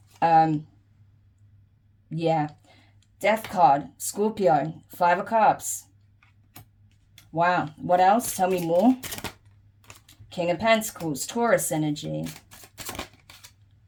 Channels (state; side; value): identical; both; correlation 1.00